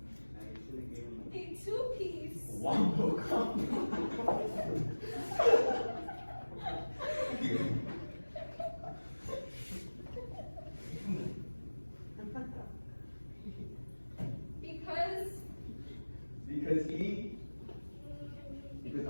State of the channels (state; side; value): inverted; both; correlation -1.00